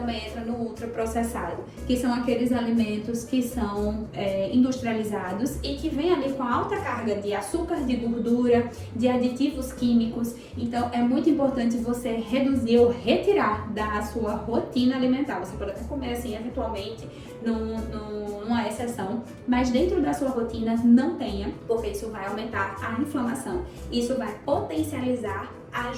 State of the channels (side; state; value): both; identical; correlation 1.00